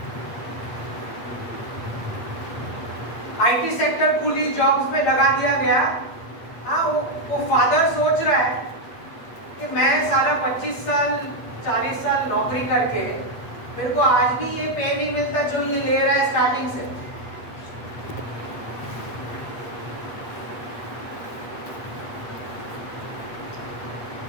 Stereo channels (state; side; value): late; right; 8.3 ms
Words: आईटी सेक्टर खुली जॉब्स में लगा दिया गया. हाँ, वो फादर सोच रहा है कि मैं साला 25 साल 40 साल नौकरी करके मेरे को आज भी ये पे नहीं मिलता जो ये ले रहा है स्टार्टिंग से.